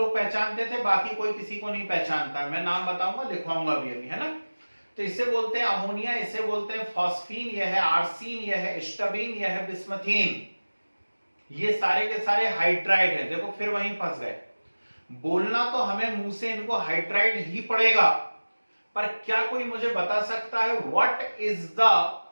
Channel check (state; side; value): inverted; both; correlation -1.00